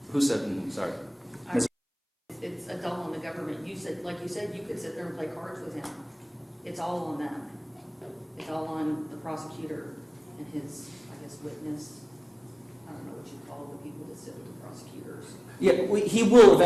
Who said, sorry? It's a dull on the government. Like you said, you could sit there and play cards with him. It's all on them. It's all on the prosecutor and his, I guess, witness. I don't know what you call the people that sit with the prosecutors. Yeah, he will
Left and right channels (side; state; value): both; identical; correlation 1.00